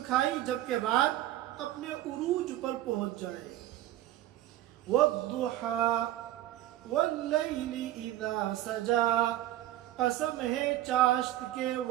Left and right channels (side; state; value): left; quieter; 14.3 dB